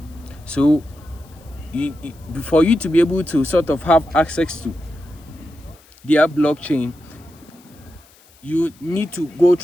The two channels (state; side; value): noise; left; hiss, 28 dB below the sound